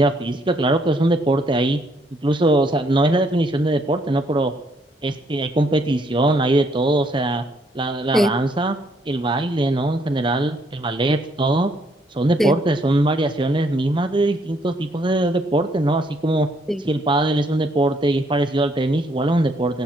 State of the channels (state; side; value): normal; both; correlation 0.69